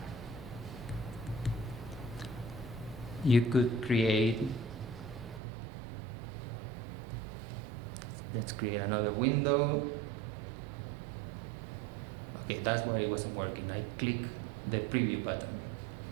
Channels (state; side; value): drops out; left; at 5.4 s